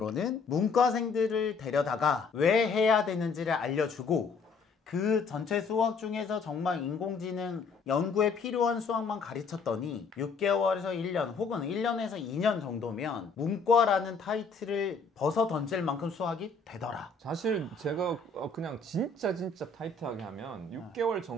문과생들을 데려다가 왜 해야 되는지를 알려주고 그 전체 수학 중에서 정말 인공지능 연구에 필요한 수학만 가르쳤더니 6개월에서 1년 혹은 1년에서 2년 정도면 문과라는 타이틀을 벗어 던질 만큼 수학이 되더라. 사실 제가 그냥 진짜 타이트하게 하면 6개월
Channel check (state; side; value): quieter; right; 4.5 dB